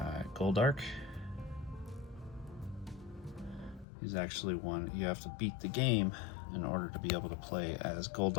Goldark. He's actually one you have to beat the game in order to be able to play as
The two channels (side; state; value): right; drops out; at 3.9 s